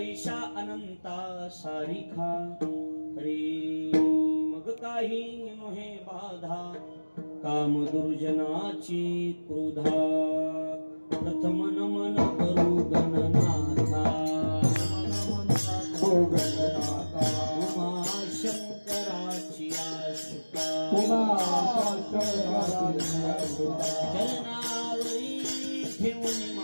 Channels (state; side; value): inverted; both; correlation -1.00